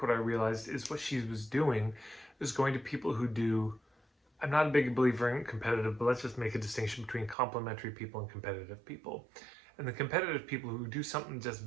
what I realized is what she was doing is going to people who do, I'm not a big believer in competitive, but let's just make a distinction between complementary people and competitive people. And the competitive people who do something just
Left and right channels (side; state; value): left; drops out; at 7.4 s